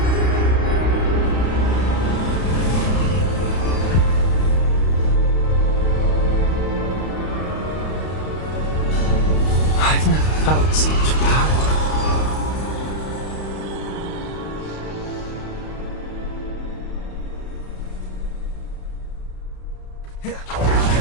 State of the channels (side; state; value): right; late; 32 ms